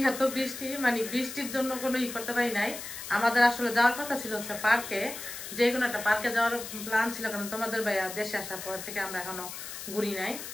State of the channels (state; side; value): noise; left; hiss, 9 dB below the sound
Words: বৃষ্টি, মানে বৃষ্টির জন্য কোনো ই করতে পারি নাই। আমাদের আসলে যাওয়ার কথা ছিল হচ্ছে পার্কে, যে কোনো একটা পার্কে যাওয়ার প্ল্যান ছিল, কারণ তোমাদের ভাইয়া দেশে আসার পর থেকে আমরা এখনো ঘুরি নাই।